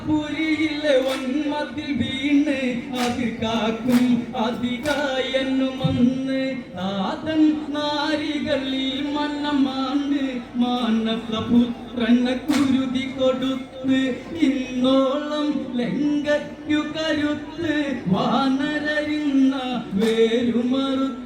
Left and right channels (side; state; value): both; identical; correlation 1.00